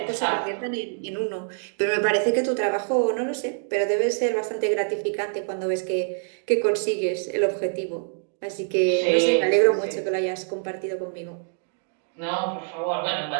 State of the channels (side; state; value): left; silent; digital silence